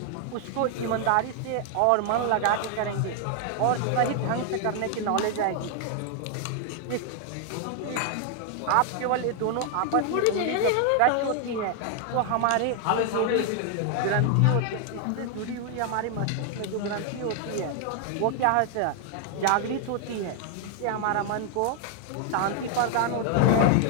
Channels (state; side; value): different; both; correlation 0.00